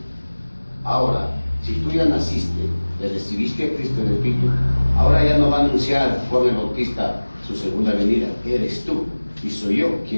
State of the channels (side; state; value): both; inverted; correlation -1.00